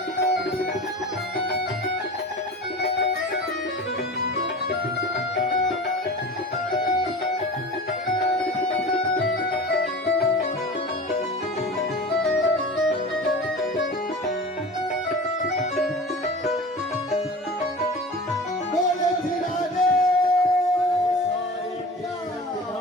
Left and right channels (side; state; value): both; normal; correlation 0.35